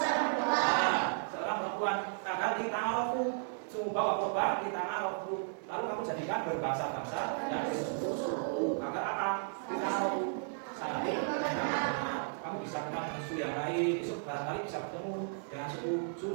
seorang perempuan. Agar di ta'arufu, sungguh bawa korban di ta'arufu. Lalu kamu jadikan berbangsa-bangsa dan suku-suku. Agar apa? Di ta'arufu. Saling kamu bisa kenal dengan suku yang lain. Besok barangkali bisa bertemu dengan suku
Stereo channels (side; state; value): left; silent; digital silence